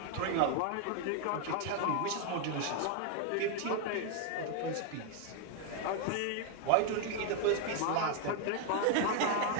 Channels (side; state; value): both; different; correlation 0.00